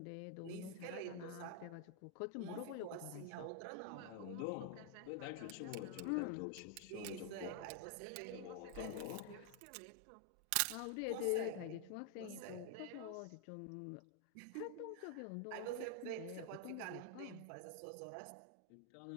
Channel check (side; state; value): both; different; correlation 0.00